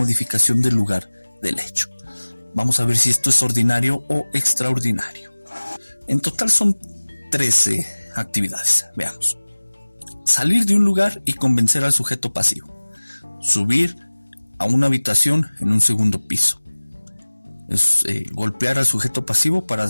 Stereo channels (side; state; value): both; inverted; correlation -1.00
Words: del lugar del hecho. Vamos a ver si esto es ordinario o extraordinario. En total son 13 actividades. Veamos. Salir de un lugar y convencer al sujeto pasivo. Subir a una habitación en un segundo piso. Golpear al sujeto pasivo para